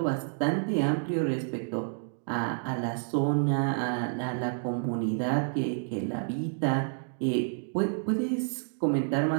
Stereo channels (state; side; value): silent; left; digital silence